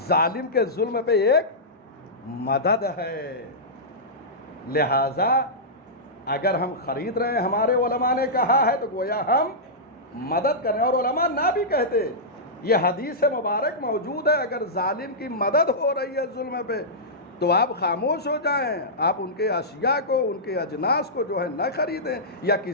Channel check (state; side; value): normal; both; correlation -0.14